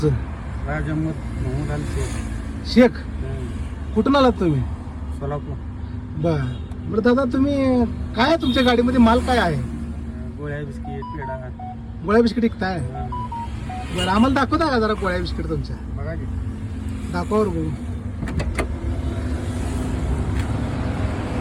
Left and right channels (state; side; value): identical; both; correlation 1.00